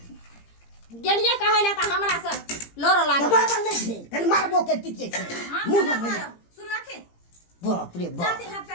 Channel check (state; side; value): late; right; 17 ms